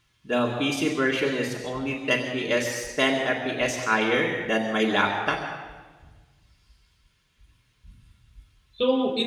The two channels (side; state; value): both; identical; correlation 1.00